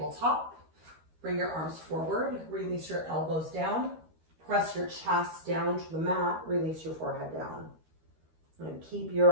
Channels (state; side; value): late; left; 13 ms